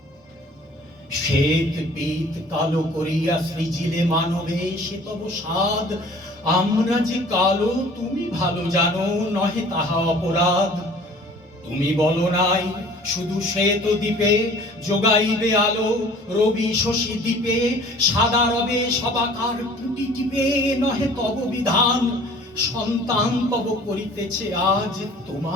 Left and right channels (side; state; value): both; normal; correlation 0.49